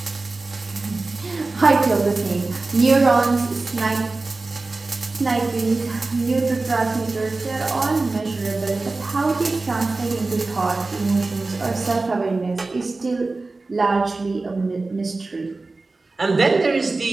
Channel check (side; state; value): left; quieter; 3.5 dB